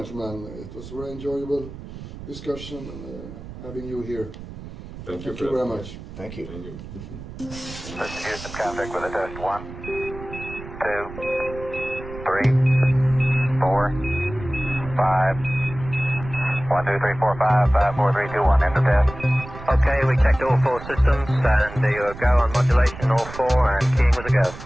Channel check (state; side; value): noise; right; rumble, 13 dB below the sound